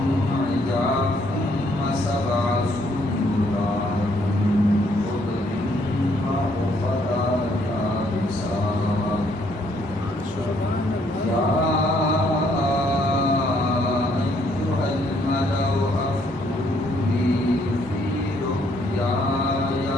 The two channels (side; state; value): both; normal; correlation 0.69